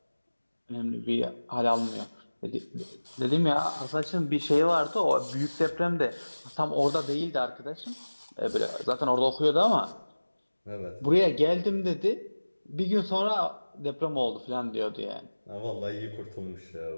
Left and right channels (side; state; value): both; inverted; correlation -1.00